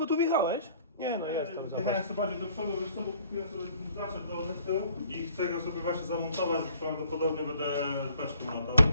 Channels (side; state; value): both; inverted; correlation -0.57